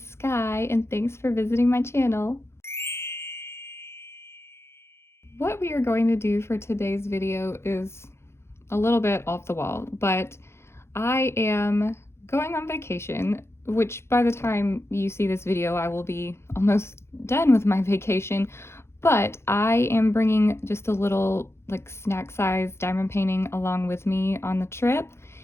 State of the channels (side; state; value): right; late; 0.12 ms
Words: Sky and thanks for visiting my channel. What we are going to do for today's video is a little bit off the wall, but I am going on vacation, which by the time you see this video, I will be almost done with my vacation, but I am bringing just a little like snack size diamond painting along with me on the trip,